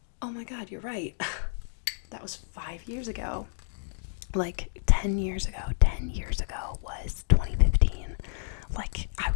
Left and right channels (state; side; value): silent; right; digital silence